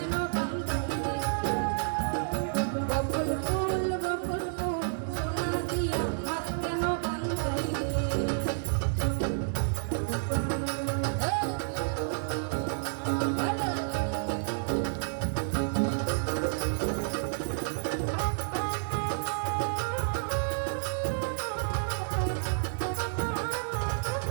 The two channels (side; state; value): left; silent; digital silence